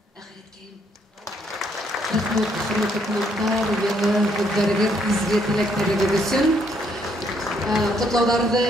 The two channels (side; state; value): both; normal; correlation 0.70